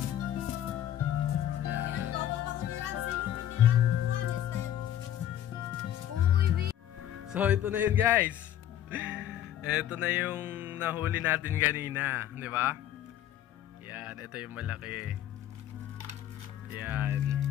So ito na yun guys. Ito na yung nahuli natin kanina, di ba? Yan, ito yung malaki. Yan.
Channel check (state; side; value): quieter; right; 11.4 dB